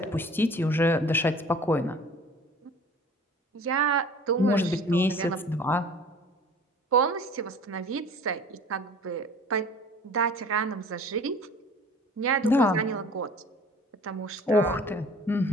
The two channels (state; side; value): normal; both; correlation 0.47